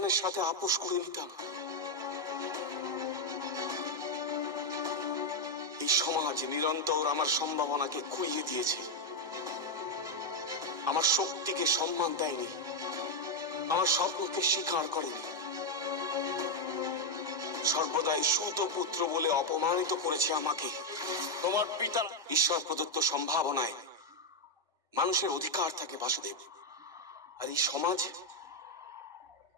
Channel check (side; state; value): both; normal; correlation 0.02